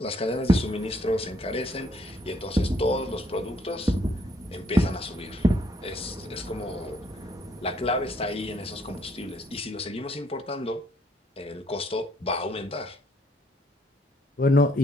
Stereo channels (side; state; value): both; normal; correlation 0.68